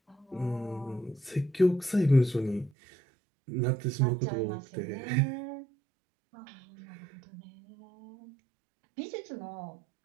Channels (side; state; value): left; drops out; at 2.7 s